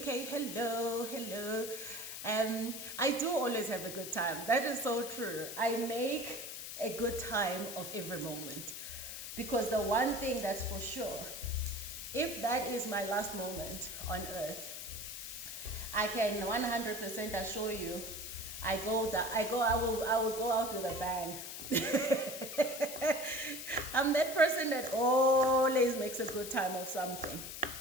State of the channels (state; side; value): noise; left; hiss, 8 dB below the sound